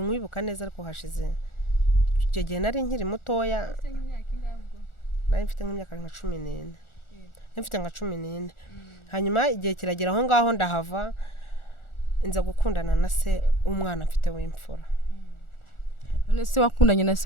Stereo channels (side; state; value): right; late; 1.4 ms